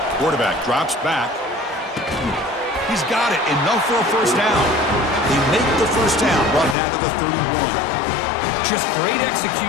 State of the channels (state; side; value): drops out; right; at 6.8 s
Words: Quarterback drops back. He's got it. Enough for a first down. They make the first down, brought down to the 31. Just great